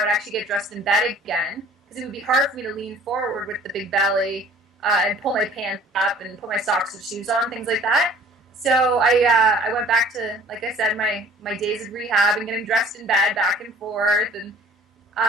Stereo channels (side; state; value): both; normal; correlation 0.50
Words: would actually get dressed in bed again because it would be hard for me to lean forward with the big belly and pull my pants up and put my socks and shoes on, things like that. So I went back to, like I said, my days of rehab and getting dressed in bed back and forth, and